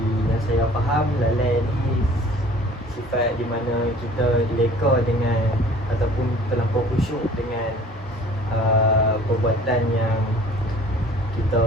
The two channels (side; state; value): both; normal; correlation 0.49